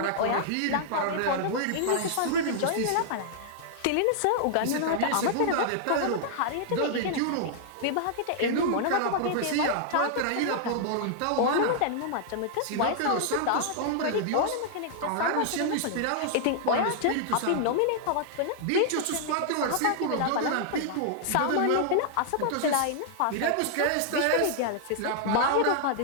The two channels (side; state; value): both; different; correlation -0.01